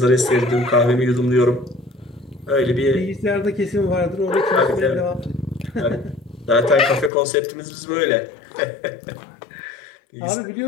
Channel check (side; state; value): right; drops out; at 7.1 s